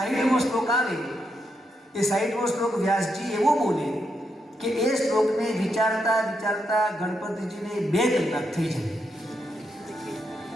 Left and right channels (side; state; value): both; normal; correlation 0.82